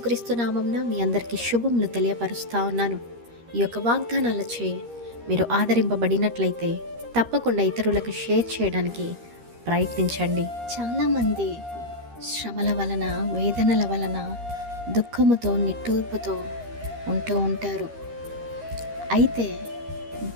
నామమున మీ అందరికీ శుభములు తెలియపరుస్తా ఉన్నాను. ఈ యొక్క వాగ్దానాలచే మీరు ఆదరింపబడినట్లయితే తప్పకుండా ఇతరులకు షేర్ చేయడానికి ప్రయత్నించండి. చాలామంది శ్రమల వలన, వేదనల వలన, దుఃఖముతో, నిట్టూర్పుతో ఉంటూ ఉంటారు. అయితే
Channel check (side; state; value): left; late; 13 ms